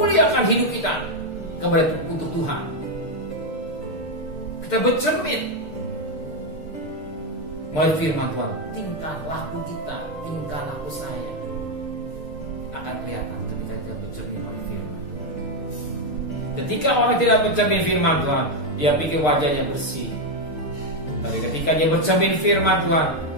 hidup kita kepada untuk Tuhan. Kita bercermin melalui firman Tuhan. Tingkah laku kita, tingkah laku saya akan kelihatan ketika kita bercermin melalui firman Tuhan. Ketika orang tidak bercermin firman Tuhan, dia pikir wajahnya bersih. Tapi ketika dia bercermin firman Tuhan,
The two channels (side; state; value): right; late; 6.6 ms